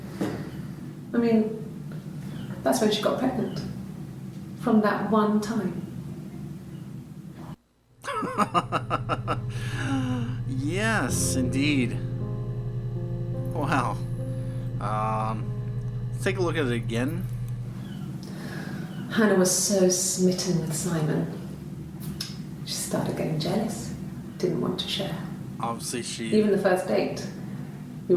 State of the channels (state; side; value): identical; both; correlation 1.00